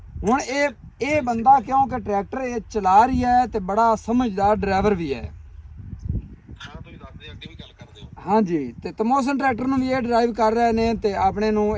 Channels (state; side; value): identical; both; correlation 1.00